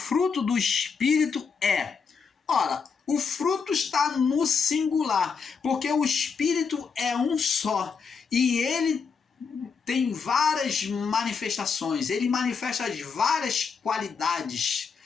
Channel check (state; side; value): quieter; right; 5.7 dB